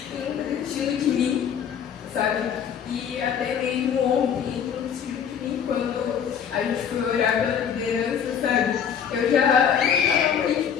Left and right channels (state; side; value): quieter; right; 8.0 dB